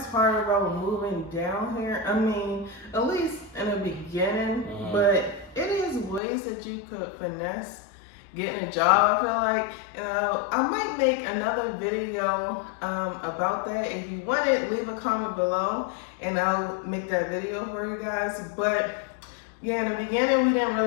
part about moving down here. I mean, at least in the beginning, but it is ways that you could finesse getting a job, I feel like. I might make another video about that. If you want it, leave a comment below and I'll make that video for you guys. But yeah, in the beginning, we didn't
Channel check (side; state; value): right; drops out; at 6.2 s